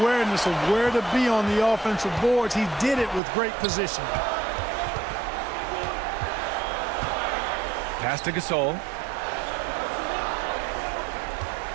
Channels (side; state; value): left; drops out; at 3.2 s